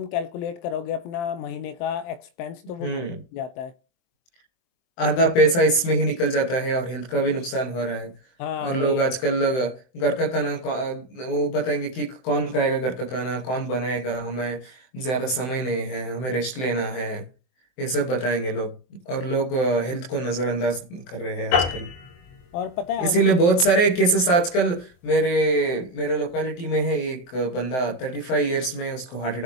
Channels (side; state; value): right; late; 23 ms